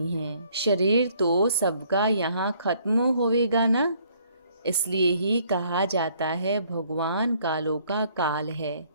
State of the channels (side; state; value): both; inverted; correlation -0.64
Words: हैं। शरीर तो सबका यहाँ खत्म होवेगा ना, इसलिए ही कहा जाता है भगवान कालों का काल है।